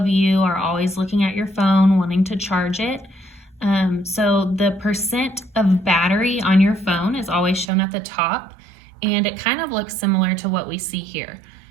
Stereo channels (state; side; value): drops out; left; at 7.7 s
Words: you are always looking at your phone, wanting to charge it. So the percent of battery on your phone is always shown at the top, and it kind of looks similar to what we see here.